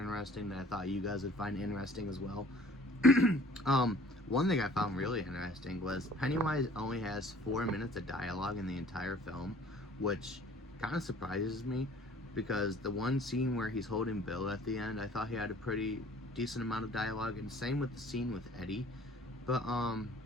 that I thought you guys would find interesting as well. One thing I found really interesting was Pennywise only has 4 minutes of dialogue in the entire film, which kind of surprises me because the one scene where he's holding Bill at the end, I thought he had a pretty decent amount of dialogue, and same with the scene with Eddie. But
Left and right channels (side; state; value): both; normal; correlation 0.52